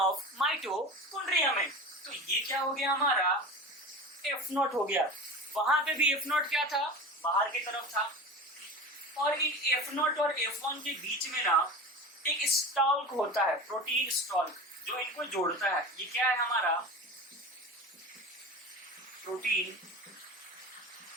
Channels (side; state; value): both; normal; correlation 0.32